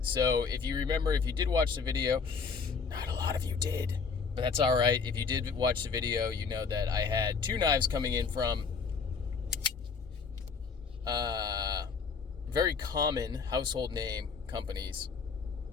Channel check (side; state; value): right; quieter; 5.2 dB